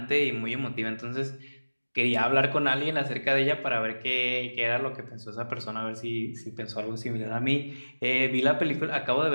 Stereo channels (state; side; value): inverted; both; correlation -1.00